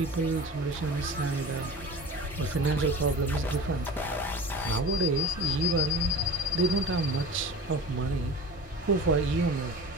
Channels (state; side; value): normal; both; correlation 0.37